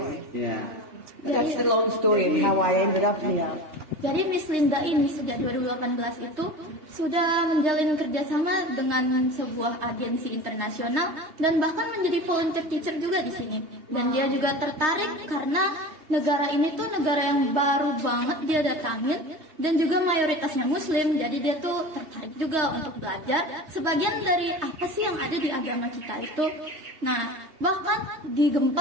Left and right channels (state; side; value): late; left; 3.2 ms